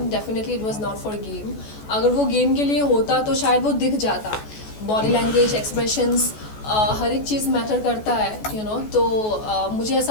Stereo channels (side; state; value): right; late; 14 ms